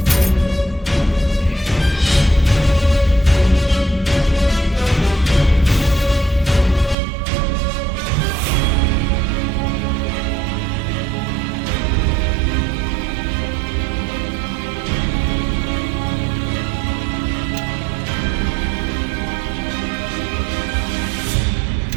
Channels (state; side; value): drops out; left; at 7.0 s